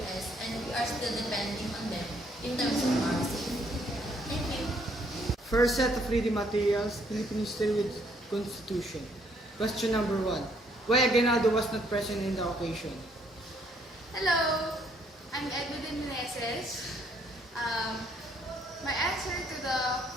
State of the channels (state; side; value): normal; both; correlation 0.68